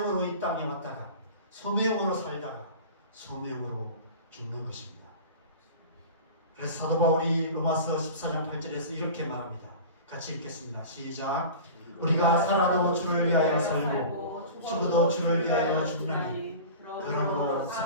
이 땅에 왔다가 소명으로 살다가 소명으로 죽는 것입니다. 그래서 사도 바울이 로마서 14장 8절에서 이렇게 말합니다. 같이 읽겠습니다. 시작. 우리가 살아도 주를 위하여 살고 죽어도 주를 위하여 죽나니 그러므로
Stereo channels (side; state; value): both; inverted; correlation -0.36